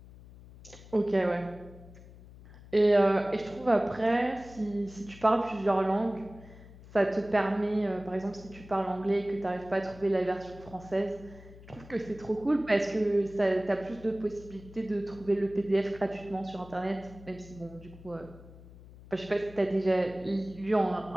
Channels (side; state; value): left; noise; hum, 19 dB below the sound